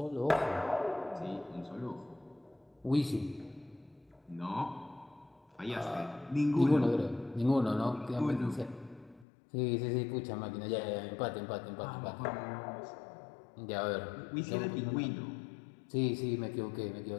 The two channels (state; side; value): drops out; right; at 9.2 s